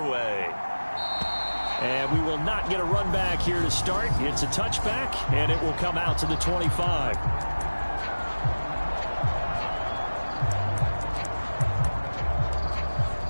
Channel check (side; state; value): both; inverted; correlation -1.00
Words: And we will not get a run back here to start. It's a touchback, and it will come out to the 25.